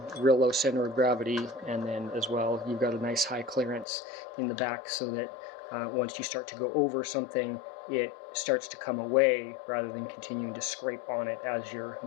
real low center of gravity, and then as well you've got a nice high clearance in the back, so that once you start to go over something, it starts to come away rather than continuing to scrape on it as you're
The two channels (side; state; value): right; drops out; at 3.9 s